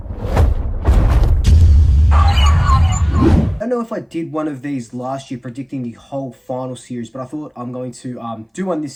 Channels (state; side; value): identical; both; correlation 1.00